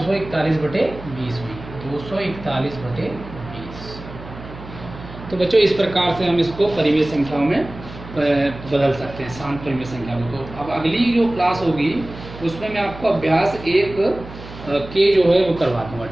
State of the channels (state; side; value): noise; right; hum, 15 dB below the sound